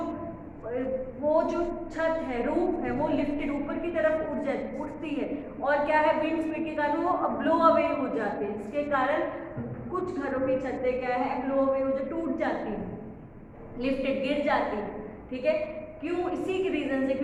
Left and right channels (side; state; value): both; identical; correlation 1.00